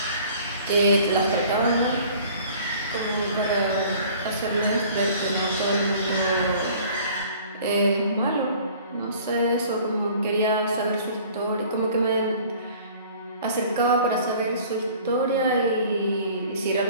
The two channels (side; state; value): both; inverted; correlation -0.50